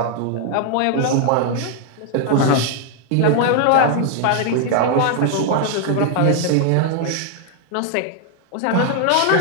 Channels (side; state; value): both; different; correlation 0.00